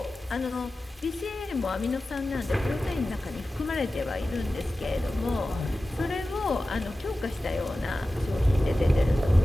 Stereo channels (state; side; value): normal; both; correlation 0.95